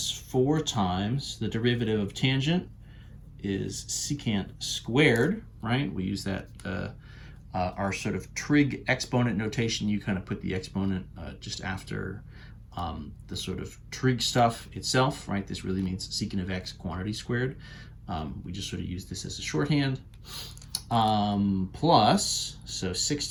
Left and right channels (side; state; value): both; identical; correlation 1.00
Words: 4 times the derivative of tangent is secant squared, right? We use that, our sort of trig exponent notation. You kind of put the exponent just after the sort of trig stuff itself, right? This really means secant of x quantity squared. We just sort of use this as a shorthand. Plus, so 6